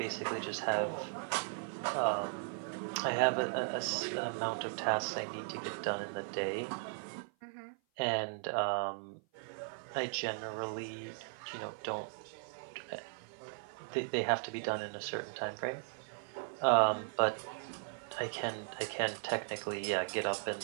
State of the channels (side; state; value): left; silent; 53 dB below the other